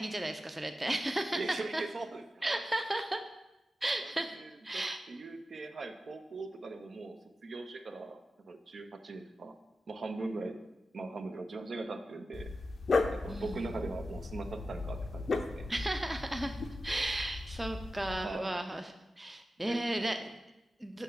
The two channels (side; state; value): both; normal; correlation 0.92